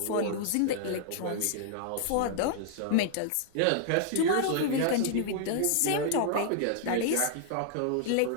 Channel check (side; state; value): both; different; correlation -0.01